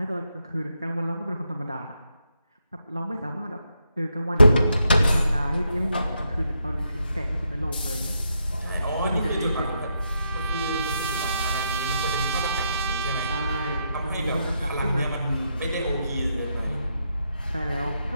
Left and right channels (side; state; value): both; inverted; correlation -0.80